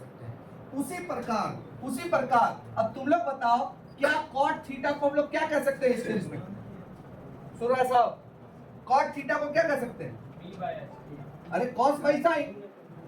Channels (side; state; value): both; identical; correlation 1.00